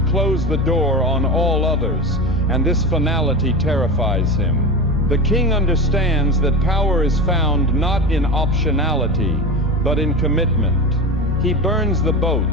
the door on all others, and this finality terrifies him. The king understands that power is found not in optionality, but in commitment. He burns the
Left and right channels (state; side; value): normal; both; correlation 0.24